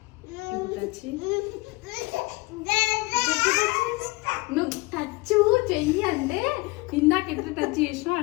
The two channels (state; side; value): quieter; right; 22.9 dB